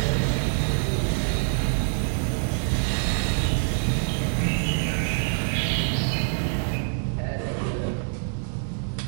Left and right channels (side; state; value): left; silent; 61 dB below the other